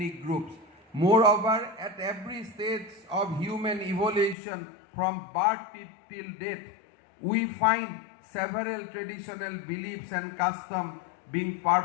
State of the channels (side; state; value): right; drops out; at 4.4 s